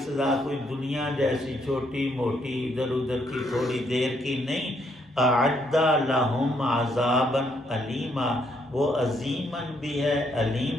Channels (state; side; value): normal; both; correlation 0.73